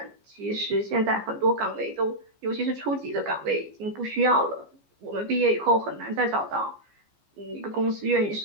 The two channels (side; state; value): left; late; 14 ms